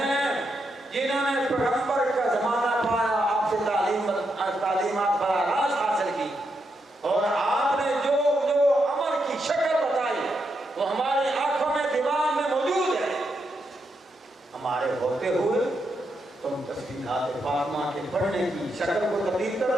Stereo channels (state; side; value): normal; both; correlation 0.82